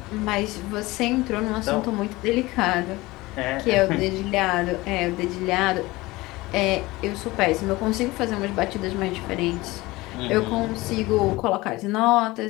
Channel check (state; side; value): quieter; right; 20.5 dB